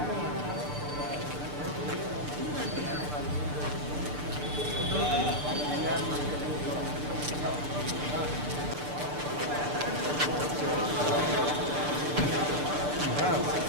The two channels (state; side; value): late; left; 6.8 ms